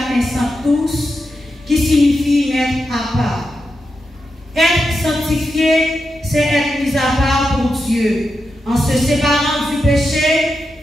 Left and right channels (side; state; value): both; normal; correlation 0.87